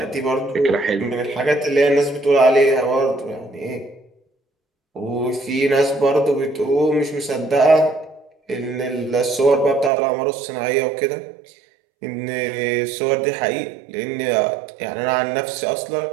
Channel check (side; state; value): left; drops out; at 9.9 s